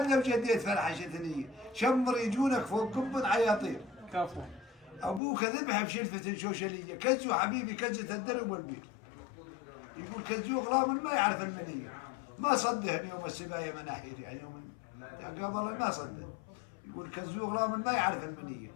لو جديت فلحه ثنيه شمر يجونك فوق قب عياطير. كفو. ابوك ذبحه بشلفه شوشليه كزو حبيبي كزه الدرب والبير. يقول كزو غلام ما يعرف المنيه ما صدهني يوم السبايه مناحير يعني يوم قبل ما صدق. يقول كزو غلام ما يعرف المنيه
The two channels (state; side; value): drops out; right; at 5.2 s